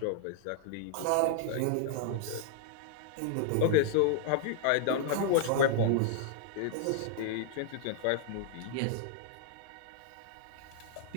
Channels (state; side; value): different; both; correlation -0.01